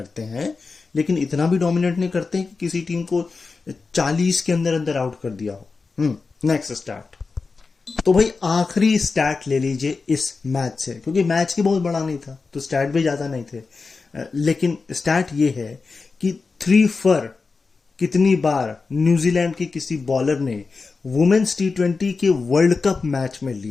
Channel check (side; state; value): right; quieter; 4.4 dB